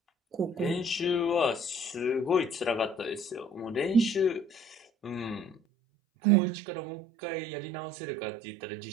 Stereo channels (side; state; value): left; drops out; at 5.6 s